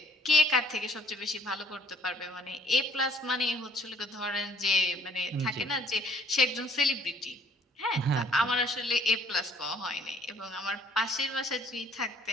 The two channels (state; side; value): normal; both; correlation 0.60